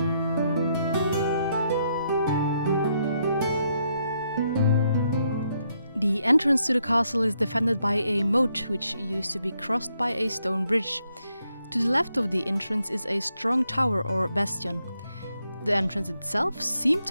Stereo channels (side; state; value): both; inverted; correlation -0.76